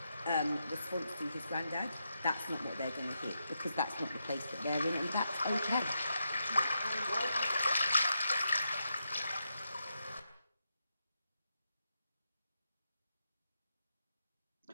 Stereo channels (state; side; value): inverted; both; correlation -0.84